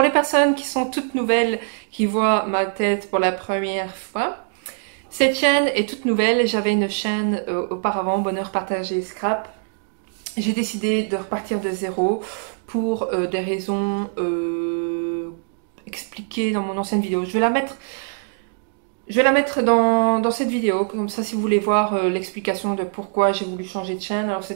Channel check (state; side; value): silent; left; 64 dB below the other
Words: les personnes qui sont toutes nouvelles, qui voient ma tête pour la première fois. Cette chaîne est toute nouvelle, j'avais une chaîne auparavant, Bonheur Partagé Scrap. J'ai décidé de repartir de zéro pour des raisons expliquées dans mon ancienne vidéo. Je vais la mettre dans cette vidéo, comme ça si vous voulez voir l'explication de pourquoi j'ai voulu changer de chaîne. Alors